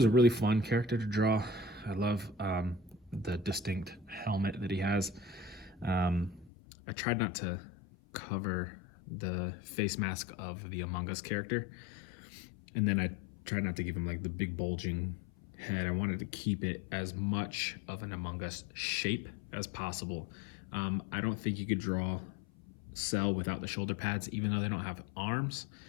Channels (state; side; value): drops out; right; at 6.5 s